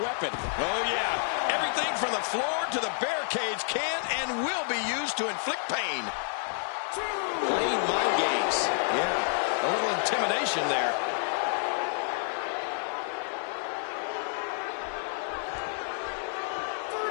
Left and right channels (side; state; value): right; silent; digital silence